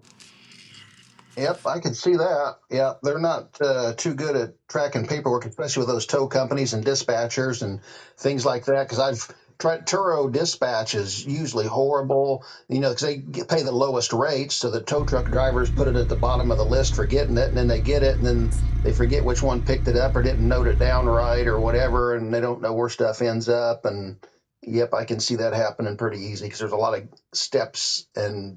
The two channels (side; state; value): both; identical; correlation 1.00